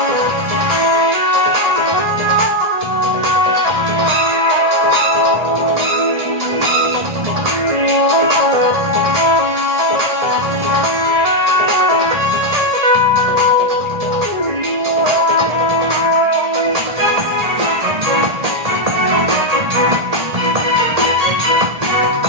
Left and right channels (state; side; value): late; left; 1.8 ms